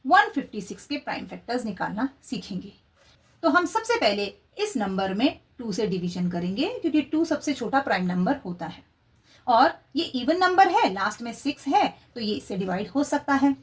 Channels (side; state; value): both; identical; correlation 1.00